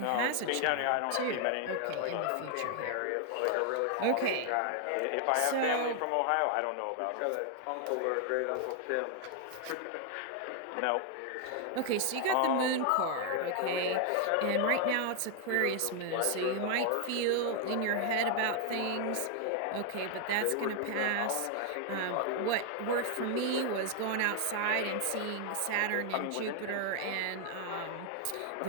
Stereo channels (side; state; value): both; different; correlation 0.00